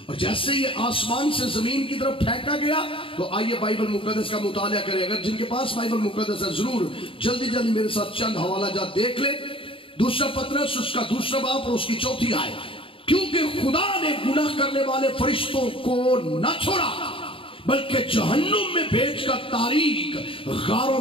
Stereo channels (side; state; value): right; late; 0.26 ms